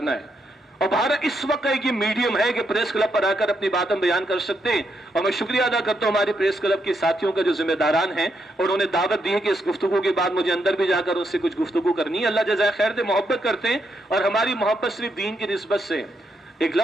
ہے اور بھارت اس وقت ایک یہ میڈیم ہے کہ پریس کلب پر آ کر اپنی باتیں بیان کر سکتے ہیں. اور میں شکریہ ادا کرتا ہوں ہمارے پریس کلب کے ساتھیوں کا جو ذمہ داران ہیں, اور انہوں نے دعوت دی ہے کہ اس گفتگو کے بعد مجھے اندر بھی جا کر ان سے کچھ گفتگو کرنی ہے. اللہ جزائے خیر دے, محبت کرتے ہیں, اور ہماری محبت صرف دین کی نسبت سے. ایک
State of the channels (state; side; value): normal; both; correlation 0.80